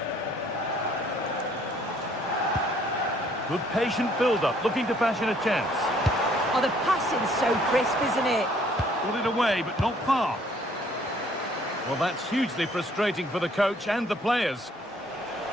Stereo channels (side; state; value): both; normal; correlation 0.62